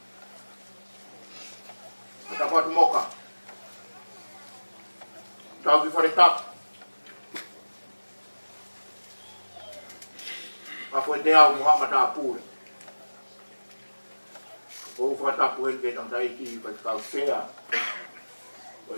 Ata puatu moka. Tau ki wharetap. Apa te au Muhammad apure. O whatapu he ke tang taiki pa kau sea.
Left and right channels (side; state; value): both; inverted; correlation -1.00